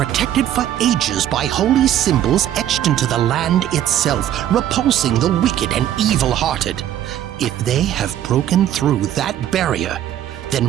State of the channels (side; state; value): left; quieter; 11.5 dB